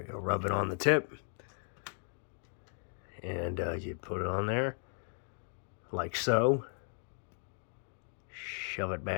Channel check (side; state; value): right; silent; 54 dB below the other